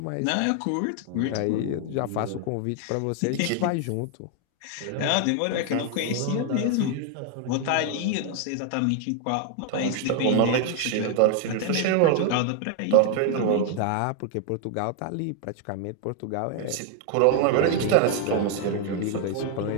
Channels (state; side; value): different; both; correlation 0.00